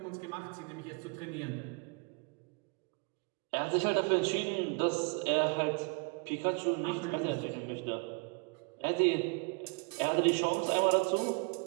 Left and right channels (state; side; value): quieter; left; 33.8 dB